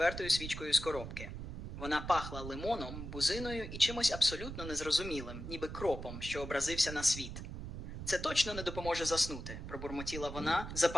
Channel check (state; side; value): noise; right; rumble, 8 dB below the sound